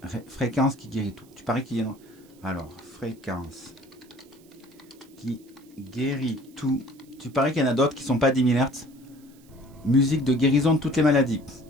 fréquence qui guérit tout. Tu paries qu'il y a... Alors, fréquence qui guérit tout. Tu paries qu'il y en a d'autres qui sont pas 10 000 Hz. Musique de guérison de toutes les maladies.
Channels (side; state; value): right; noise; hiss, 29 dB below the sound